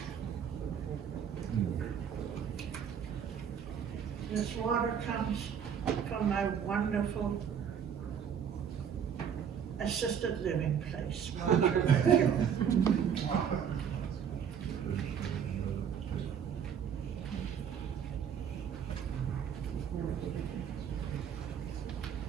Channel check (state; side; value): quieter; left; 8.0 dB